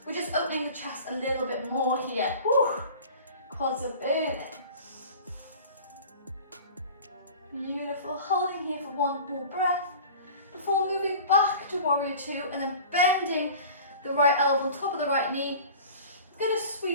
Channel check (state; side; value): inverted; both; correlation -0.41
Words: We're just opening the chest a little bit more here. Whew. Quads are burning. Beautiful. Holding here for one more breath before moving back to warrior two and then bending the right elbow on top of the right knee. I'm going to